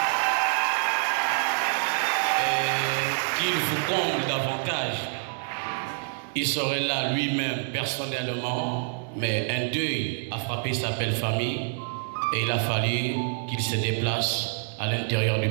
Et qu'il vous comble davantage. Il serait là lui-même personnellement, mais un deuil a frappé sa belle famille et il a fallu qu'il se déplace à l'intérieur du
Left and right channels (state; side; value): silent; left; digital silence